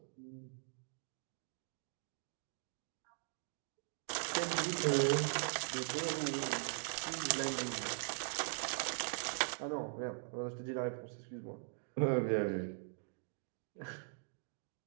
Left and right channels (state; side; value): silent; left; digital silence